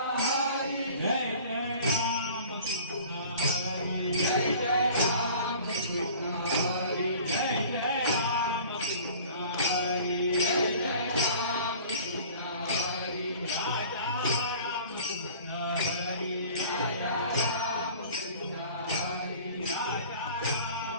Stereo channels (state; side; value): inverted; both; correlation -0.46